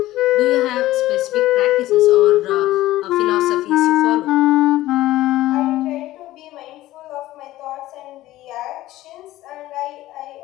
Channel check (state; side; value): quieter; right; 15.9 dB